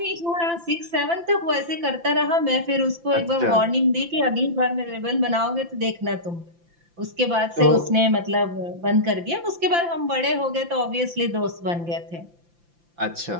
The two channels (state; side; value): late; left; 5.9 ms